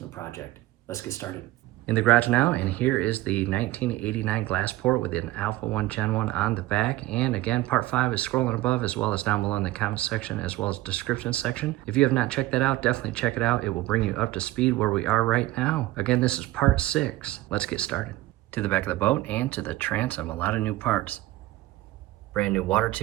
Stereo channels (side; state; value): left; quieter; 17.1 dB